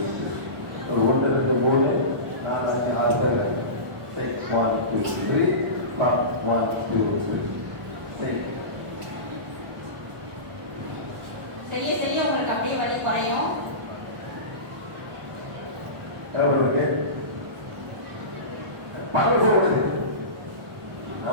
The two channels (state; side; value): late; left; 1.0 ms